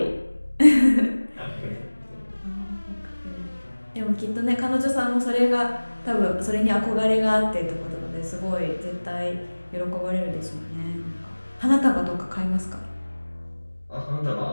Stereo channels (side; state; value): both; inverted; correlation -1.00